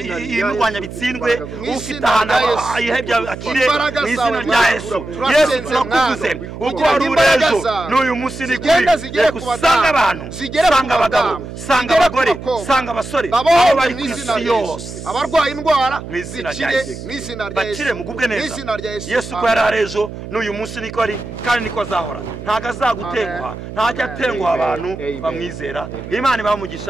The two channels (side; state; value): right; noise; hum, 11 dB below the sound